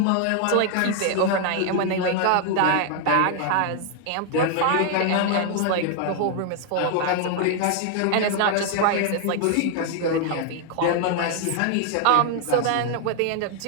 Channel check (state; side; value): different; both; correlation 0.00